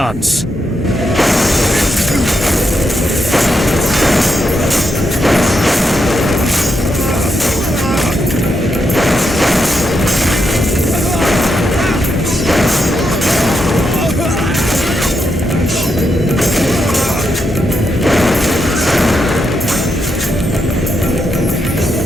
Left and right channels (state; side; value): normal; both; correlation 0.82